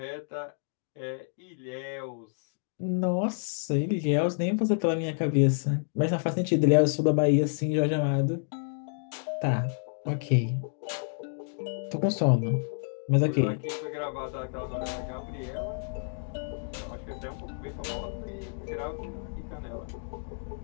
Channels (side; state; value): right; silent; digital silence